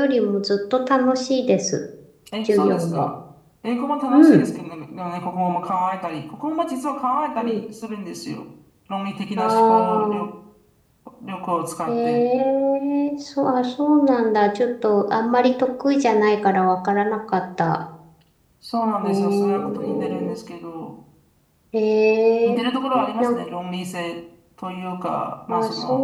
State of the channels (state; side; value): identical; both; correlation 1.00